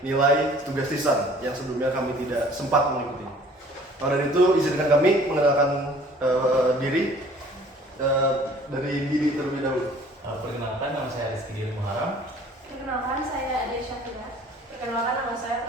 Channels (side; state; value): both; normal; correlation 0.52